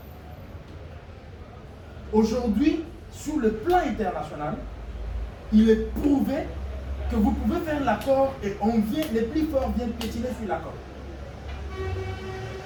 Aujourd'hui, sur le plan international, il est prouvé que vous pouvez faire l'accord et les plus forts viennent piétiner sur l'accord.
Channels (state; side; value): identical; both; correlation 1.00